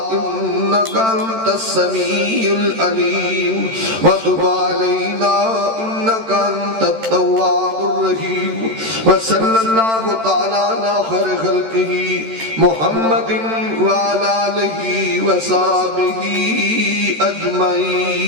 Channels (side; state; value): left; late; 13 ms